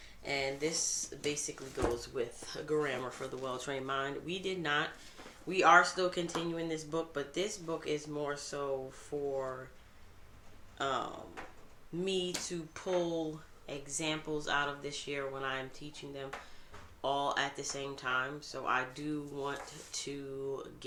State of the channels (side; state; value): both; identical; correlation 1.00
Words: And this basically goes with grammar for the well-trained mind. We are still continuing this book, but this book is more so for me to pull examples out of this year when I'm teaching them all at the same time. So I do want to